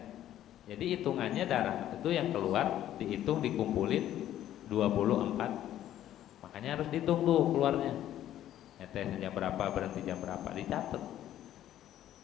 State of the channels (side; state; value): right; quieter; 12.2 dB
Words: Jadi hitungannya darah itu yang keluar dihitung, dikumpulin 24. Makanya harus dihitung tuh keluarnya. Nyetes jam berapa, berhenti jam berapa, dicatat.